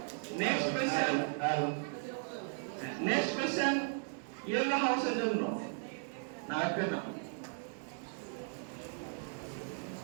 নেক্সট কোশ্চেন ইয়েলো হাউসের জন্য না একটা না।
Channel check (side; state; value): left; silent; 53 dB below the other